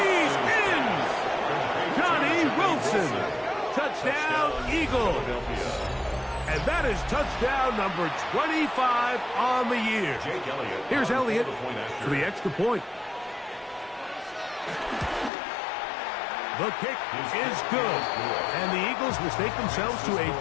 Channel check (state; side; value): drops out; right; at 15.3 s